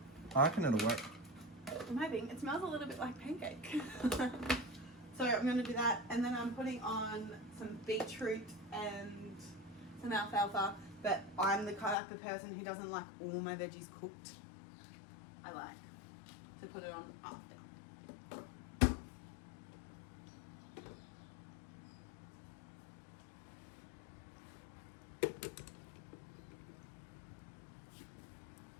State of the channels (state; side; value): drops out; right; at 12.0 s